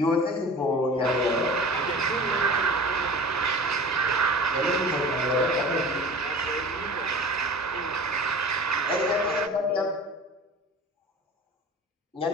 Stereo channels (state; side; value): normal; both; correlation 0.38